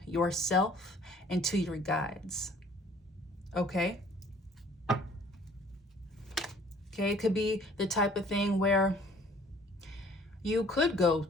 yourself and to your guides. Okay? Okay, it could be the type of thing where you could go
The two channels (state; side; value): normal; both; correlation 0.55